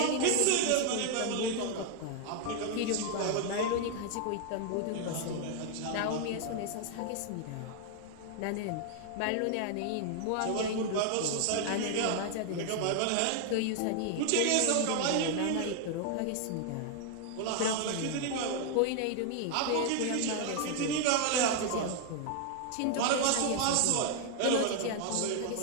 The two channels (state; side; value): different; both; correlation 0.00